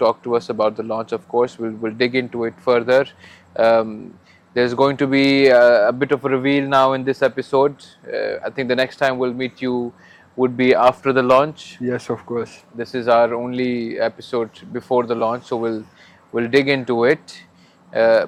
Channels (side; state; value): both; identical; correlation 1.00